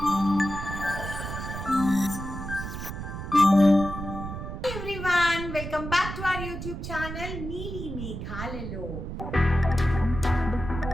Everyone, welcome back to our YouTube channel నీలి మేఘాలలో.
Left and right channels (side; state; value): right; noise; rumble, 7 dB below the sound